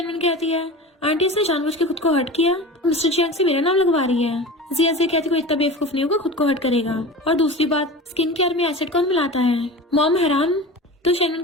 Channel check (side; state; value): both; normal; correlation 0.33